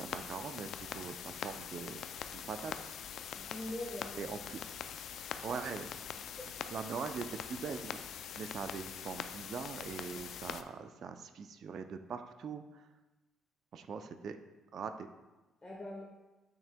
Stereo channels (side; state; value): both; normal; correlation 0.66